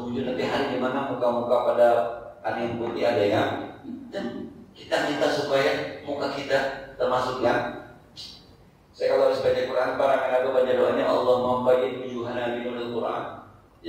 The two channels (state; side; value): identical; both; correlation 1.00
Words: wujuh, nanti hari di mana muka-muka pada ada yang putih ada yang hitam. Kita minta supaya muka kita termasuk yang, saya kalau harus baca Quran, para mengaku baca doanya Allah membayyin wujuhana binuril Quran.